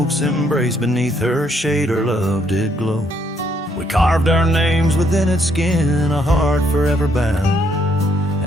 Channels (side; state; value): both; normal; correlation 0.71